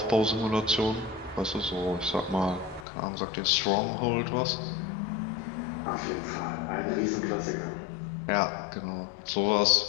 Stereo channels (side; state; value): right; drops out; at 2.9 s